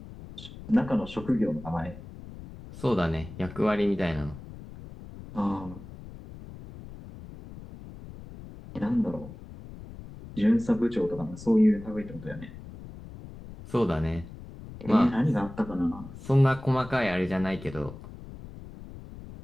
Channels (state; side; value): noise; left; rumble, 15 dB below the sound